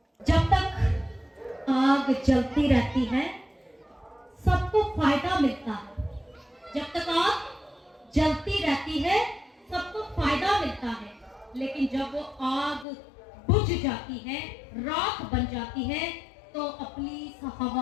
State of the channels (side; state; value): right; drops out; at 12.9 s